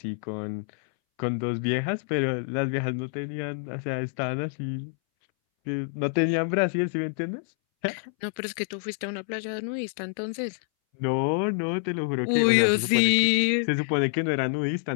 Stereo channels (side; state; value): right; silent; 60 dB below the other